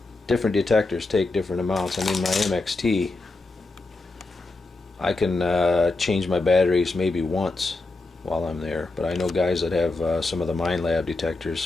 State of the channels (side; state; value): right; quieter; 3.2 dB